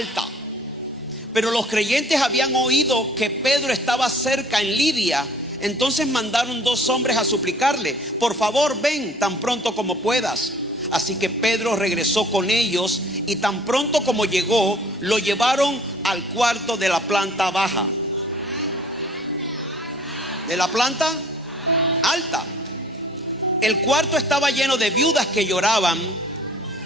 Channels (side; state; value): both; normal; correlation 0.53